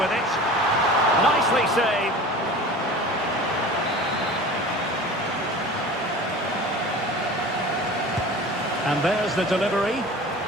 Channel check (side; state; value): both; normal; correlation 0.38